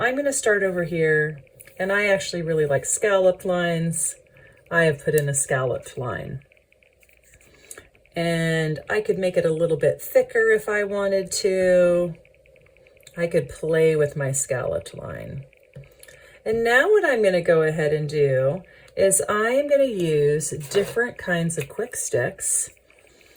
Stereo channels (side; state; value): both; identical; correlation 1.00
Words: going to start over here, and I actually really like scalloped lines. I have put in a scalloped line. And I could make it a little bit thicker if I wanted to. I could play with my scalloped line. And now what I'm going to go ahead and do is I am going to use different kinds of quick sticks,